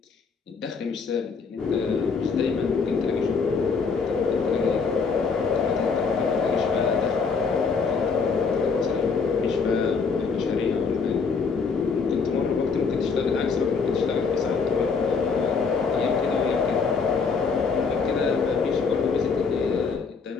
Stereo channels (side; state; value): right; quieter; 5.1 dB